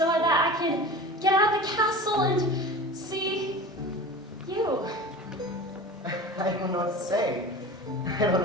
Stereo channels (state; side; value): normal; both; correlation 0.34